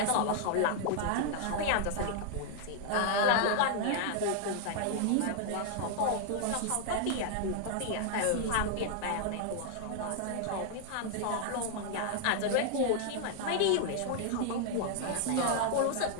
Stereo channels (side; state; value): both; different; correlation 0.00